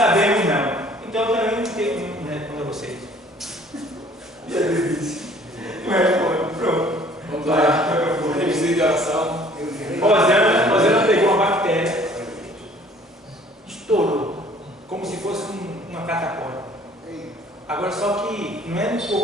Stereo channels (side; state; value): both; normal; correlation 0.55